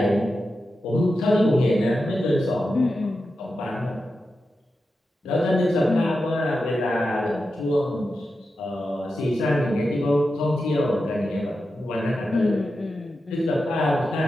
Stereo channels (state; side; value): normal; both; correlation 0.90